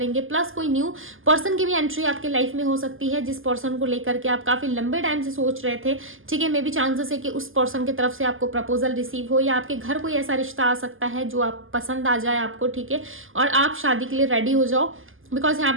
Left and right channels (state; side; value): late; left; 0.59 ms